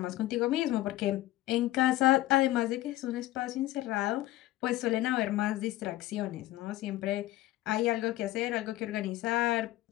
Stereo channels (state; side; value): quieter; right; 16.0 dB